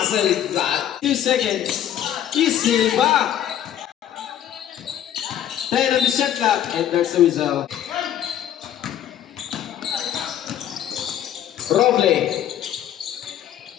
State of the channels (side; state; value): right; quieter; 10.9 dB